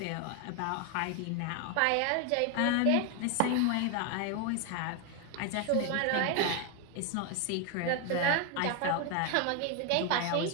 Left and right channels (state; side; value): different; both; correlation 0.01